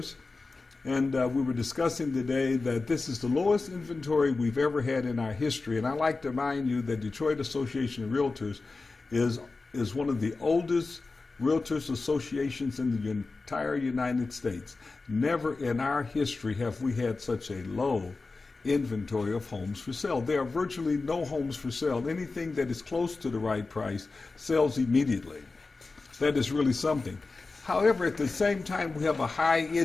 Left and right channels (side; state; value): right; quieter; 3.8 dB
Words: and we were discussing today that this is the lowest inventory we've ever had in our history. And I'd like to remind you that Detroit Association of Realtors is one of the oldest Realtors associations in the entire United States. Never in our history have we had such a low inventory of homes for sale. There are virtually no homes for sale. Anything that is close to the right price sells immediately. That is really something. However, at the same time, we have a high